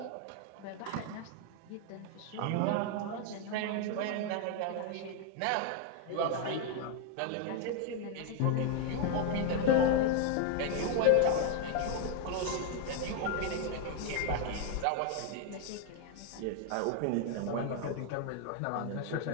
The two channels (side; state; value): both; different; correlation 0.01